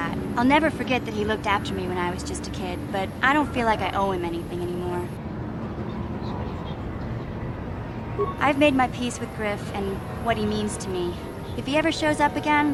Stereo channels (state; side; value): identical; both; correlation 1.00